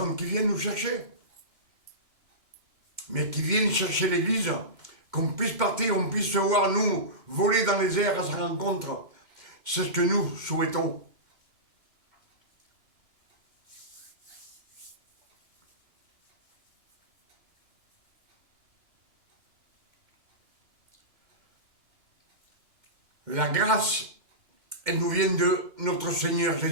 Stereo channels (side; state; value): left; late; 2.1 ms